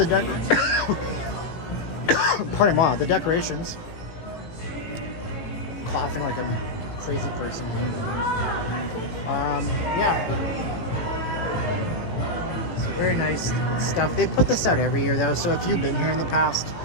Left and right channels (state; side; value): late; right; 18 ms